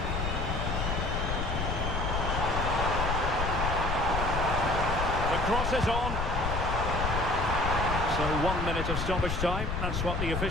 The cross is on. So 1 minute of stoppage time. That's what the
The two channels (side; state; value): left; noise; rumble, 2 dB below the sound